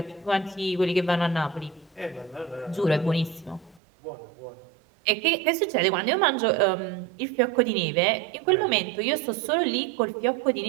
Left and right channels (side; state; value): left; drops out; at 3.8 s